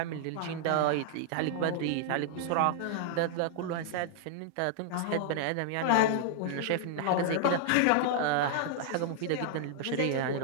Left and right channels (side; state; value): both; different; correlation -0.01